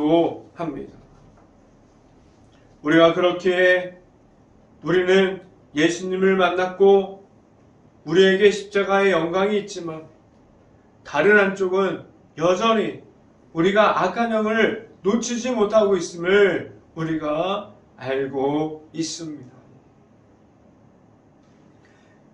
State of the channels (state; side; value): identical; both; correlation 1.00